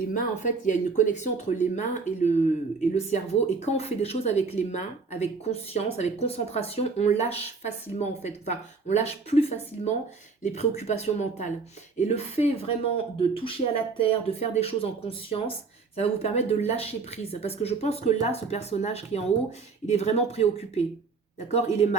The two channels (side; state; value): left; quieter; 4.7 dB